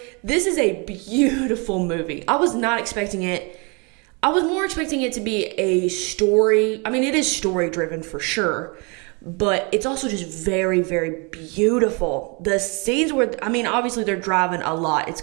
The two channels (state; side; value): quieter; left; 31.6 dB